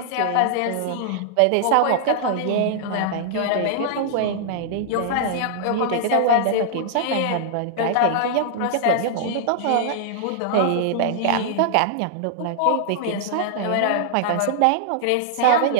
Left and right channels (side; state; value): both; different; correlation -0.01